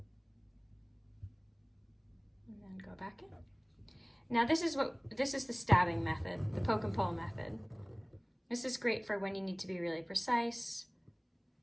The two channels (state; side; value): identical; both; correlation 1.00